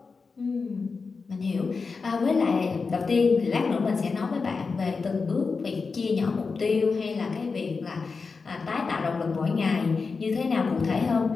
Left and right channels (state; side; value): quieter; right; 4.7 dB